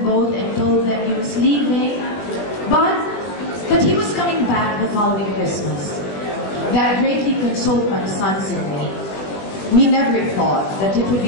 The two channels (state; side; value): late; right; 20 ms